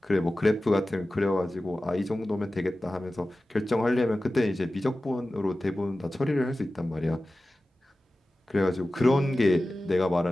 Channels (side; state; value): both; normal; correlation 0.95